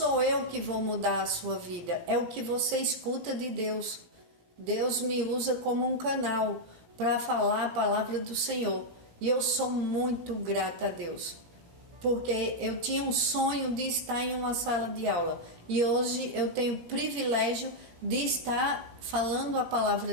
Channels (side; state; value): left; late; 17 ms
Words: eu que vou mudar a sua vida, é o que você escuta de Deus. Deus me usa como um canal para falar a palavra do Senhor. E eu sou muito grata a Deus, porque eu tinha um sonho de estar em uma sala de aula. E hoje eu tenho o privilégio de estar falando a